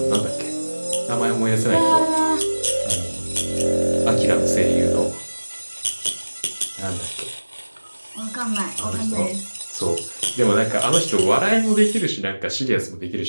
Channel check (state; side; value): inverted; both; correlation -1.00